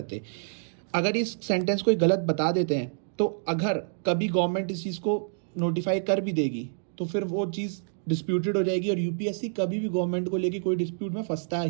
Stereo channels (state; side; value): silent; left; digital silence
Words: अगर इस सेंटेंस कोई गलत बता देते हैं तो अगर कभी गवर्नमेंट इस चीज़ को नोटिफाई कर भी देगी तो फिर वो चीज़ डिस्प्यूटेड हो जाएगी, और यूपीएससी कभी भी गवर्नमेंट को लेके कोई डिस्प्यूट में फंसता